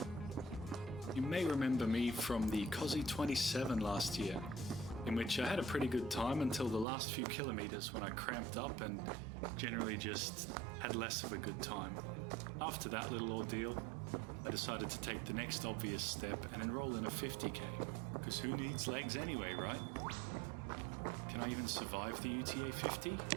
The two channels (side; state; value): left; drops out; at 6.9 s